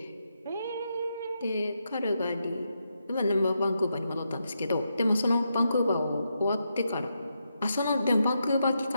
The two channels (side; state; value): both; inverted; correlation -0.83